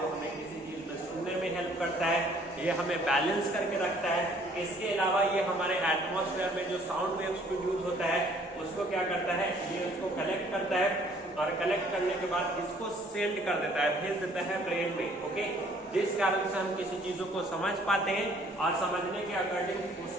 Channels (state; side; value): normal; both; correlation 0.59